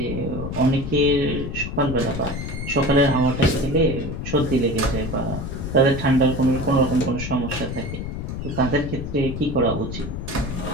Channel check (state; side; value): noise; left; rumble, 6 dB below the sound